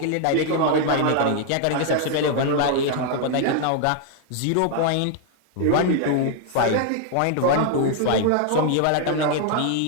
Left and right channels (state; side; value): different; both; correlation 0.00